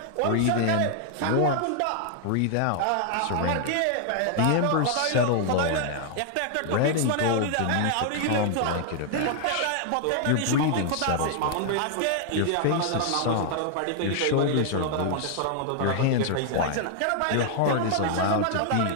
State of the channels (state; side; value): different; both; correlation 0.00